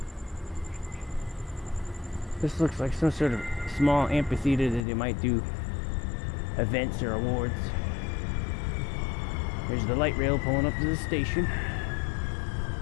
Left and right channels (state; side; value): drops out; right; at 4.9 s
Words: This looks like some sort of small amphitheater that they might do events or awards. There's the light rail pulling up to the station.